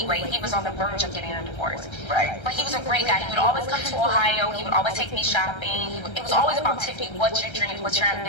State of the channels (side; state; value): right; late; 1.3 ms